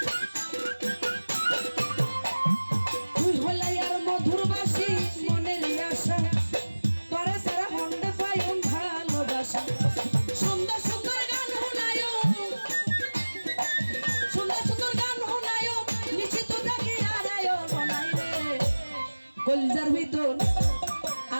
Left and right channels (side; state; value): both; inverted; correlation -1.00